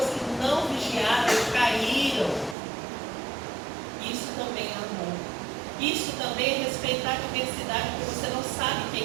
que não vigiaram, caíram. Isso também é amor. Isso também é respeitar a diversidade, porque você não sabe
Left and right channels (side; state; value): left; drops out; at 2.6 s